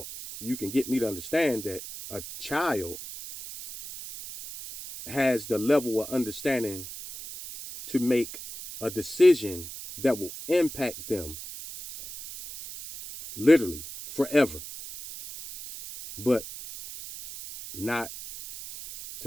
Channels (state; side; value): noise; right; hiss, 11 dB below the sound